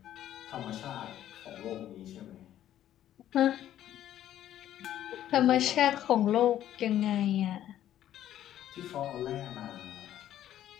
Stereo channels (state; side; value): quieter; right; 11.9 dB